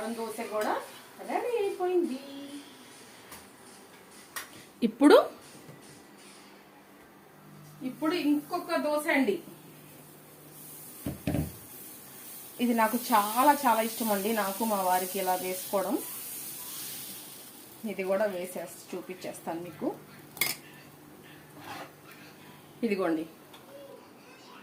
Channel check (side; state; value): both; identical; correlation 1.00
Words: దోశ కూడా రెడీ అయిపోయింది. ఇప్పుడు ఇప్పుడు ఇంకొక దోశ అండి. ఇది నాకు చాలా చాలా ఇష్టం అండి, నాకు మా వారికి ఇలా వేసుకోవడం. ఇది కూడా చూపించేస్తాను మీకు. ఇదిగోండి,